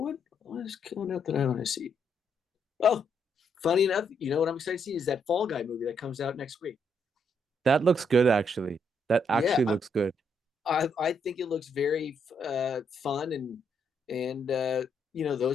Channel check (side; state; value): both; normal; correlation 0.75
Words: is coming out that I want to see? Oh, funny enough, you know what I'm excited to see is that Fall Guy movie that comes out next week. That looks good, actually. That Yeah, actually looks good. I think it looks very fun, and